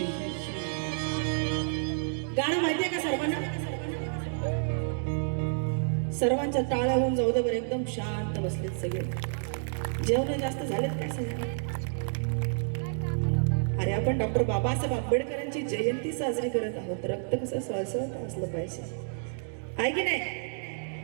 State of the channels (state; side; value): silent; left; digital silence